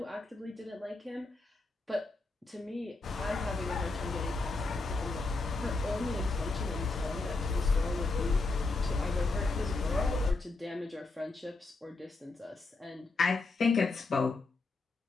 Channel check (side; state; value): right; quieter; 3.5 dB